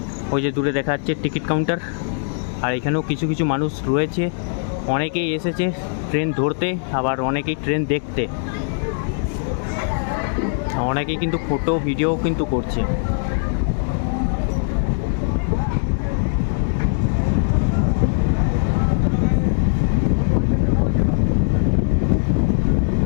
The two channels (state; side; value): silent; right; digital silence